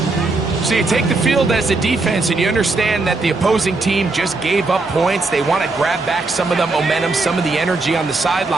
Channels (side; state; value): left; quieter; 3.4 dB